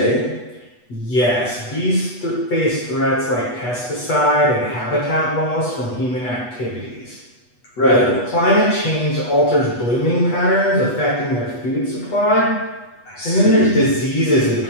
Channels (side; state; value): right; late; 8.2 ms